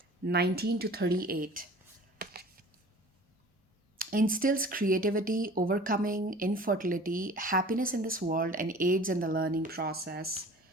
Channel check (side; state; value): both; normal; correlation 0.44